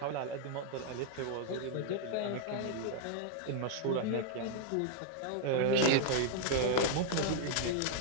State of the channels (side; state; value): both; different; correlation 0.00